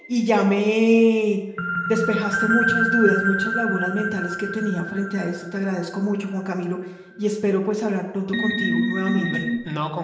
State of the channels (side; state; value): both; identical; correlation 1.00